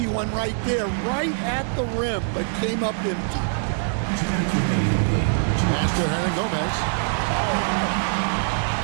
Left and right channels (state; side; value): silent; left; digital silence